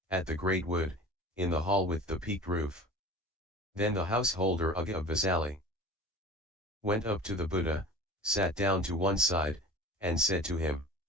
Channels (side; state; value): both; normal; correlation 0.39